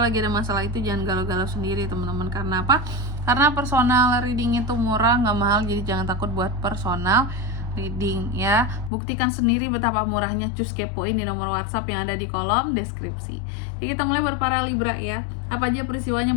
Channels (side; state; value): right; drops out; at 8.9 s